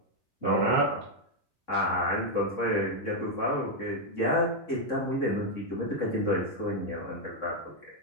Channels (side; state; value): right; late; 3.6 ms